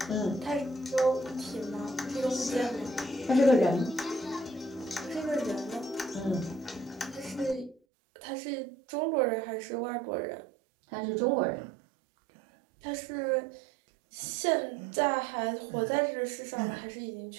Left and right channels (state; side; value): drops out; left; at 7.8 s